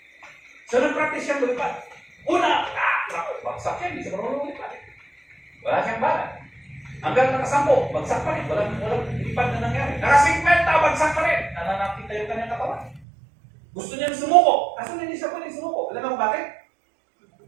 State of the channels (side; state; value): left; drops out; at 13.0 s